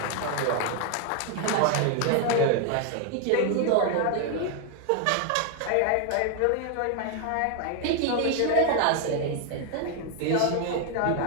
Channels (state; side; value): different; both; correlation 0.00